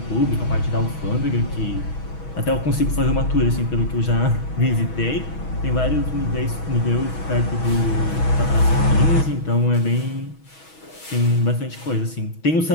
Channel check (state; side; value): late; right; 6.2 ms